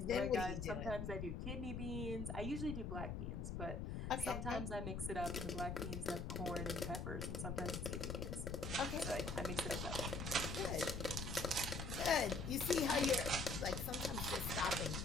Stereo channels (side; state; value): left; noise; rumble, 3 dB below the sound